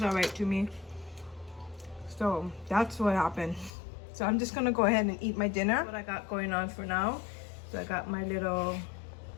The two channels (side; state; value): right; drops out; at 3.7 s